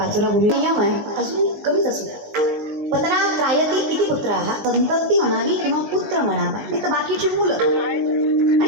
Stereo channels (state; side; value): late; left; 19 ms